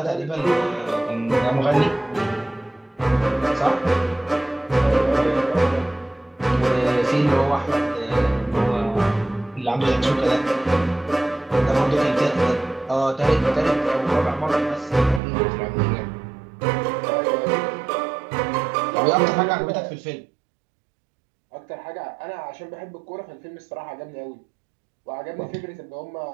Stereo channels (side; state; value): left; drops out; at 15.2 s